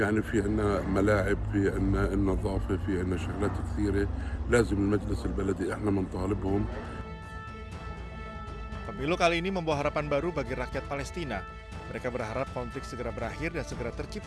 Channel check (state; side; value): identical; both; correlation 1.00